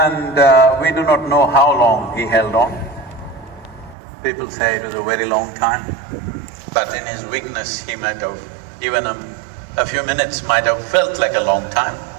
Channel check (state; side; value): drops out; left; at 4.0 s